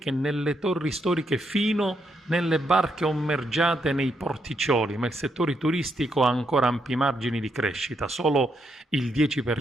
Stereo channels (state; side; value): normal; both; correlation 0.78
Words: nelle torri storiche fino nelle barche ommergiate nei porticcioli, ma il settore turistico ha ancora ampi margini di crescita. Solo il